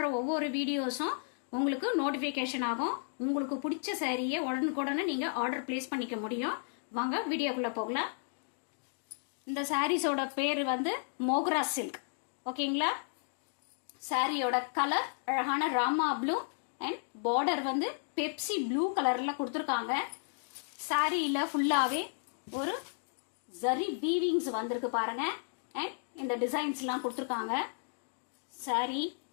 ஒவ்வொரு வீடியோஸும் உங்களுக்கு நோட்டிபிகேஷன் ஆகும். உங்களுக்கு பிடிச்ச சாரியை உடனுக்குடனே நீங்க ஆர்டர் பிளேஸ் பண்ணிக்க முடியும். வாங்க வீடியோக்குள்ள போகலாம். இந்த சாரீஸோட பேர் வந்து மோக்ரா சில்க். ஓகேங்களா? சாரியோட கலர் அழகான ராமா ப்ளூ அண்ட் பார்டர் வந்து பெப்சி ப்ளூ கலர்ல கொடுத்துருக்காங்க. சாரியில ஃபுல்லாவே ஒரு ஜரி வீவிங்ஸ் வந்திருக்கு பாருங்க. அண்ட் இந்த டிசைன்ஸ் எல்லாம் கொடுத்துருக்காங்க. சாரி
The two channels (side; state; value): right; silent; digital silence